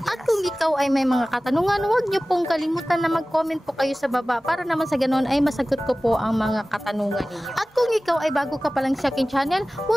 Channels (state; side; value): normal; both; correlation 0.97